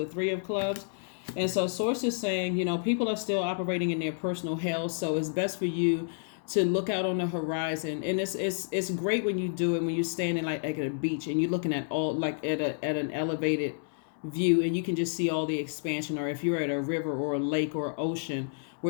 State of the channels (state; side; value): silent; right; 58 dB below the other